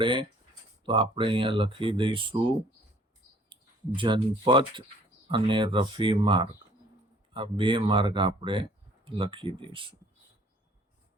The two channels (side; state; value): both; normal; correlation 0.57